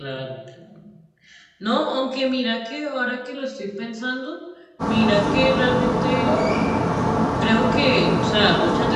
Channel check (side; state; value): both; identical; correlation 1.00